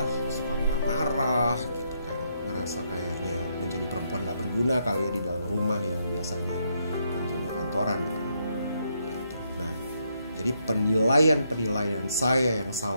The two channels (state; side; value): inverted; both; correlation -0.77